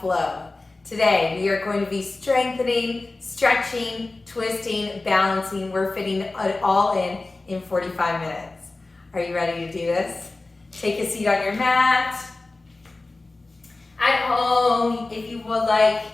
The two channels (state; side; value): quieter; right; 3.2 dB